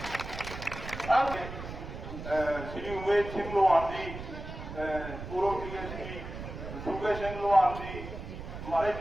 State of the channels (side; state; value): right; noise; rumble, 9 dB below the sound